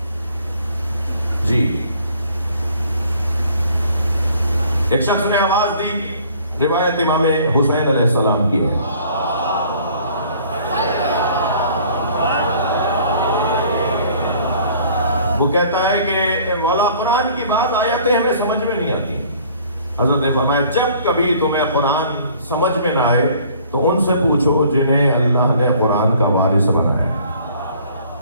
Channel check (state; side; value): inverted; both; correlation -0.55